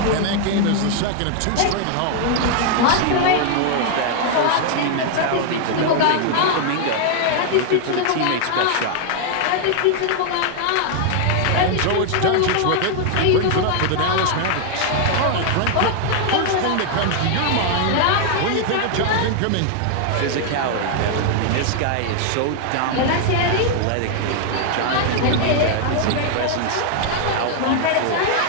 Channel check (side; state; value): both; different; correlation 0.00